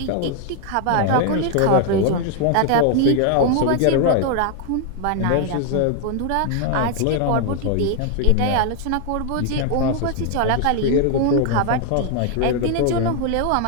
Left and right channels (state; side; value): different; both; correlation 0.00